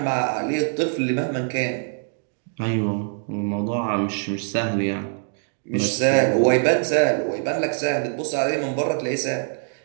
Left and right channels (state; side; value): silent; left; 63 dB below the other